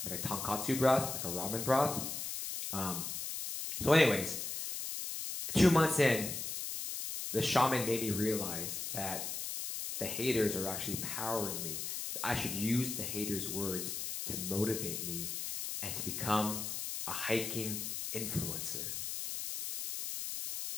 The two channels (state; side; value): noise; left; hiss, 4 dB below the sound